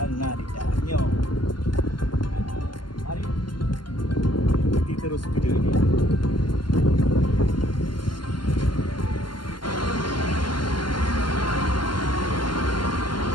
nari dalamnya. Nah, mari ikuti terus video ini.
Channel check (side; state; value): right; late; 0.71 ms